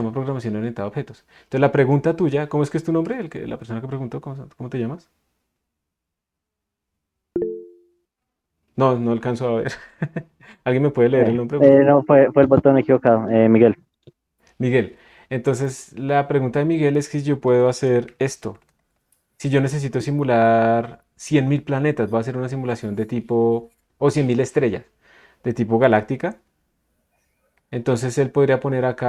programación orientada a objetos. Entonces la pregunta tuya, ¿cómo es que es tu nombre? La persona que preguntó, ¿cómo te llamas? No, no alcanzo a ver. ¿Alguien me puede leer el nombre, por favor? No, fue el botón equivocado, Miguel. Miguel. Entonces la pregunta de Miguel es que si yo puedo hacer esto. Si yo necesito simular 100.000 planetas, voy a hacer una simulación de tipo, o 100.000 estrellas, de tipo galáctica. Entonces él podría poner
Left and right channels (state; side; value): identical; both; correlation 1.00